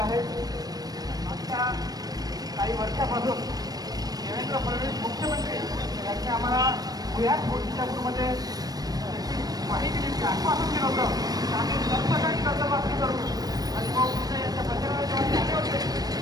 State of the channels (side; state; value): left; late; 0.19 ms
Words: मागच्या काही वर्षापासून देवेंद्र फडणवीस मुख्यमंत्री यांनी आम्हाला पुण्यात मोर्चापूरमध्ये माहिती दिली, आश्वासन दिलं होतं की आम्ही सरसकट कर्जमाफी करू. आणि मग यांच्या प्रचाराला जेव्हा ते आले होते